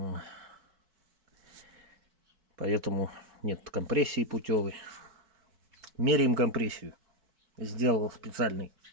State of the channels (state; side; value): late; left; 4.6 ms